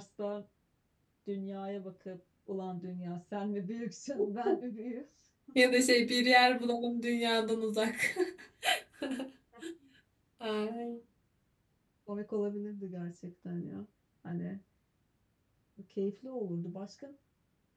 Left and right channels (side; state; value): both; identical; correlation 1.00